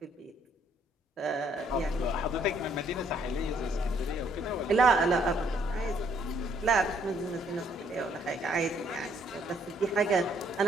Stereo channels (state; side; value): normal; both; correlation 0.66